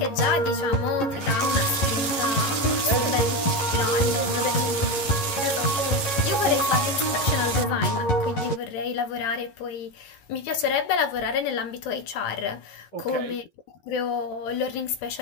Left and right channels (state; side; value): late; right; 11 ms